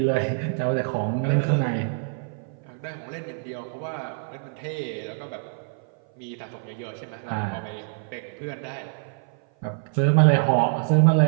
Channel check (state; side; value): silent; left; 56 dB below the other